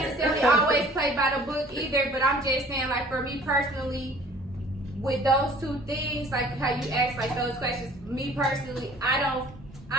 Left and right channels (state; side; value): normal; both; correlation 0.51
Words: always play by the book either, but I'm just saying, like, for me personally, with those two things, like how you ask like those questions, me personally, I